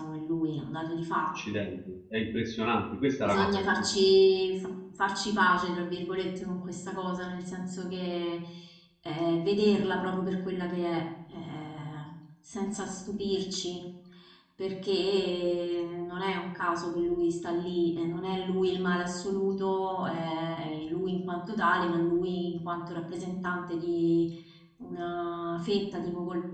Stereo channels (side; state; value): both; identical; correlation 1.00